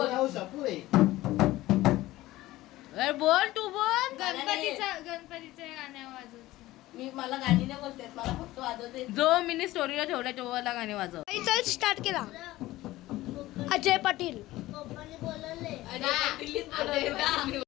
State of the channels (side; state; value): right; quieter; 17.1 dB